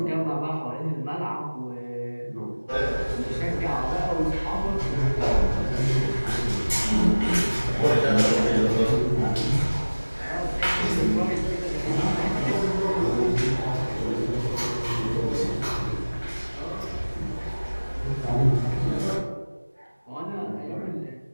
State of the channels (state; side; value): inverted; both; correlation -1.00